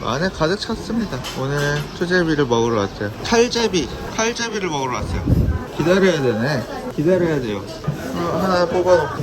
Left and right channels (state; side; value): identical; both; correlation 1.00